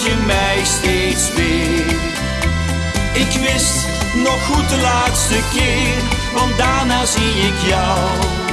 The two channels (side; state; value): both; identical; correlation 1.00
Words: je mij steeds weer. Ik wist nog goed de laatste keer, want daarna zie ik jou